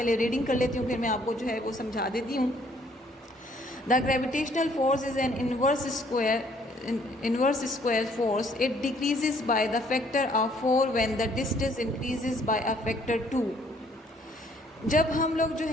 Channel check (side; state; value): both; normal; correlation 0.63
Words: रीडिंग कर लेती हूँ फिर मैं आपको जो है वो समझा देती हूँ। The gravitational force is an inverse square force. It decreases by the factor of 4 when the distance increases by a factor 2. जब हम लोग जो